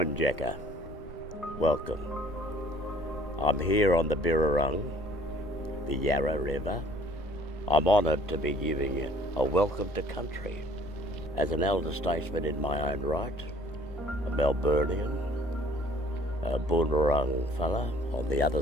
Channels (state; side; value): normal; both; correlation 0.55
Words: Jacker, welcome. I'm here on the Birrarung, the Yarra River. I'm honoured to be giving you a welcome to country. As an elder statesman in my own right, a Melburnian, a Boonwurrung fella on the other